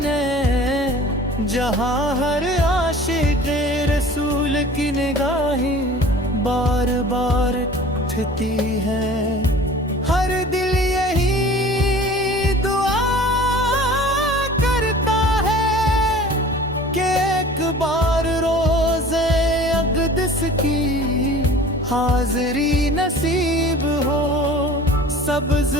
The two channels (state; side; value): normal; both; correlation 0.44